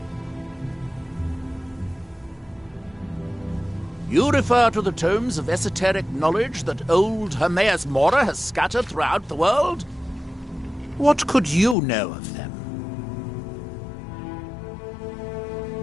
You refer to the tomes of esoteric knowledge that old Hermaeus Mora has scattered throughout the world? What could you know of them?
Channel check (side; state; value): right; drops out; at 11.8 s